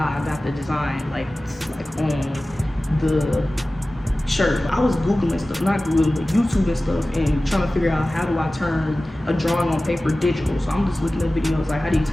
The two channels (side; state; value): both; normal; correlation 0.97